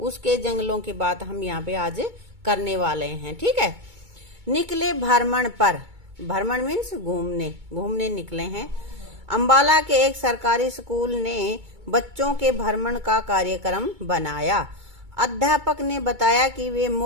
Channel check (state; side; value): late; left; 2.2 ms